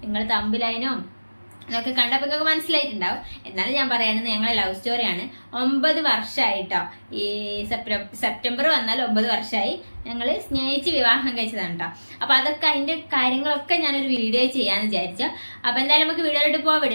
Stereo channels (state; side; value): inverted; both; correlation -1.00